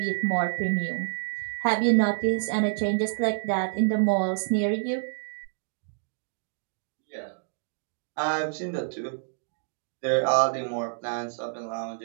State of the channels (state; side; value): silent; left; digital silence